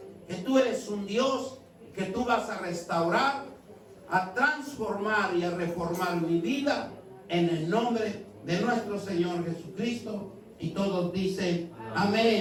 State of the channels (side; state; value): both; identical; correlation 1.00